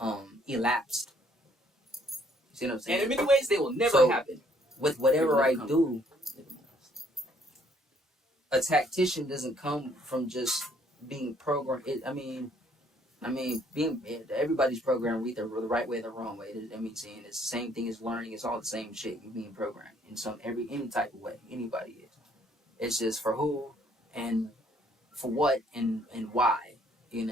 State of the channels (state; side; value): normal; both; correlation 0.65